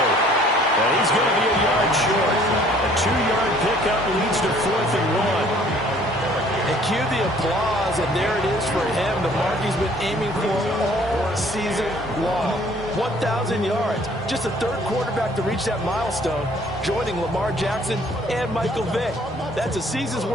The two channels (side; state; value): both; normal; correlation 0.57